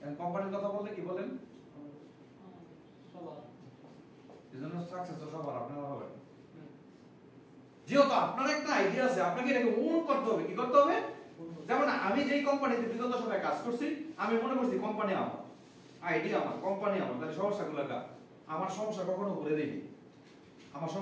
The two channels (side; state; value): both; identical; correlation 1.00